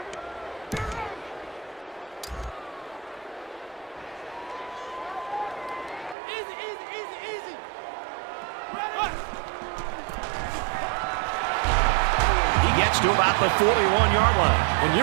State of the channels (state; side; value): drops out; left; at 6.2 s